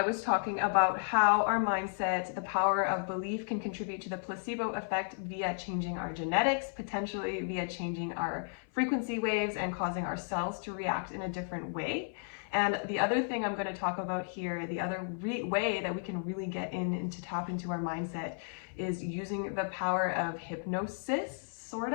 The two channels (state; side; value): silent; right; 55 dB below the other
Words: was talking about how our mindset, the power of belief, can contribute to the placebo effect via changing our genetics, potentially via changing our frequency waves and causing our cells to react in a different way. And the other thing I'm going to talk about here, the other way that we can really get in and to tap into our mindset, is using the power of hypnosis, sort